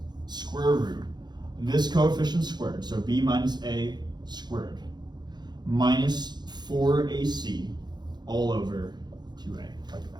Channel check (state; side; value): late; left; 0.21 ms